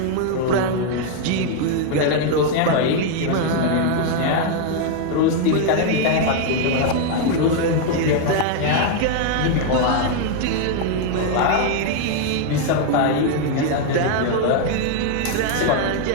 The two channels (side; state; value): both; different; correlation 0.00